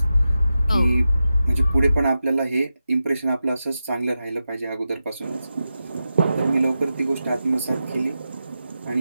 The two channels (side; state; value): both; inverted; correlation -0.91